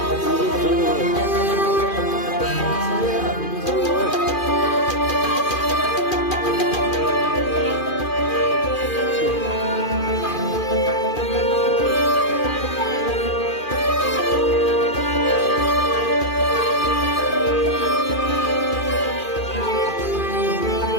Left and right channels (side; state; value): right; late; 2.4 ms